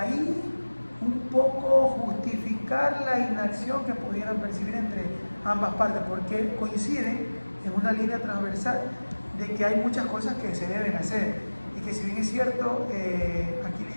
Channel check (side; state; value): both; inverted; correlation -1.00